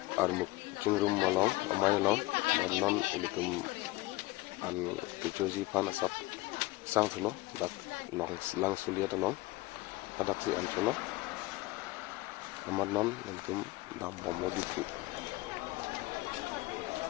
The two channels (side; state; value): right; quieter; 20.6 dB